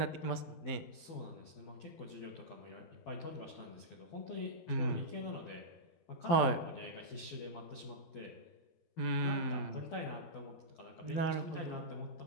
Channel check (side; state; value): right; late; 12 ms